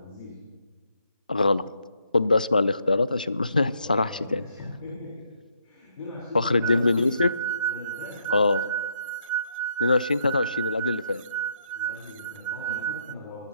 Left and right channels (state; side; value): inverted; both; correlation -0.74